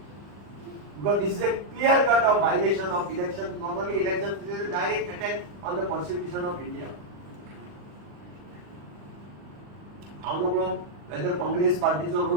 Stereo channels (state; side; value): late; left; 40 ms